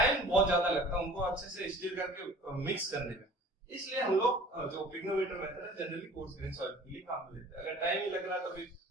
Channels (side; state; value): both; normal; correlation 0.46